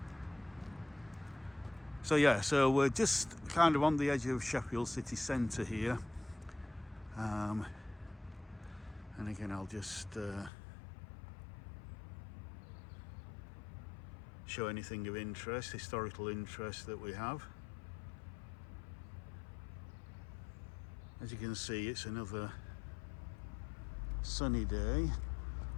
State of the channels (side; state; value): right; drops out; at 10.5 s